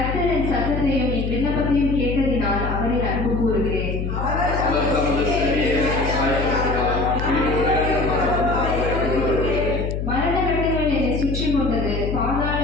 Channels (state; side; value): noise; left; hum, 3 dB below the sound